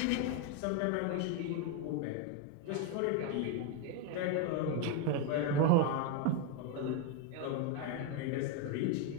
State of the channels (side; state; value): both; different; correlation 0.02